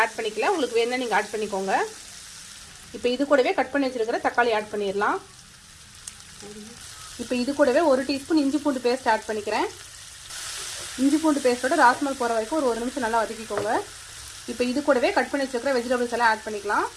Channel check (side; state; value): both; identical; correlation 1.00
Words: ஆட் பண்ணிக்கல. உங்களுக்கு வேணும்னா நீங்கள் ஆட் பண்ணிக்கோங்க. இப்போ இது கூடவே கட் பண்ணி வச்சிருக்கிற தக்காளி ஆட் பண்ணிடலாம். இப்போ இது கூடவே 1 டீஸ்பூன் இஞ்சி பூண்டு பேஸ்ட் ஆட் பண்ணிக்கிறேன். இஞ்சி பூண்டு பேஸ்ட்டோட ராஸ்மல் போகிற வரைக்கும் ஒரு 1 நிமிஷம் நல்லா வதக்கிக்கோங்க. இப்போ இது கூடவே கட் பண்ணி வச்சிருக்கிற வெஜிடபிள்ஸ் எல்லாம் ஆட் பண்ணிக்கலாம்.